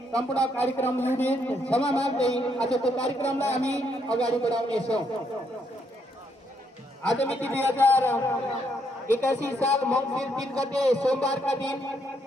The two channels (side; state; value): both; normal; correlation 0.74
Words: सम्पूर्ण कार्यक्रम युनिट क्षमा माग्दै आजको कार्यक्रमलाई हामी अगाडि बढाउनेछौँ। आज मिति 2081 साल मङ्सिर 3 गते सोमबारका दिन